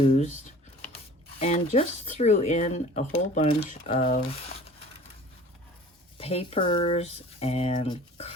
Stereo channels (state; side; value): normal; both; correlation 0.45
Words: And just threw in a whole bunch of papers and